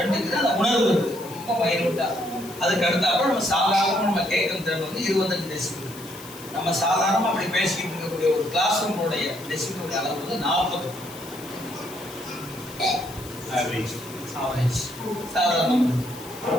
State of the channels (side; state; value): left; noise; hiss, 16 dB below the sound